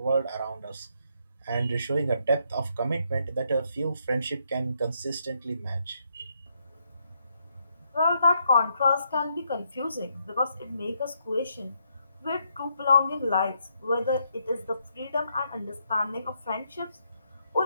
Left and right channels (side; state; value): both; inverted; correlation -0.76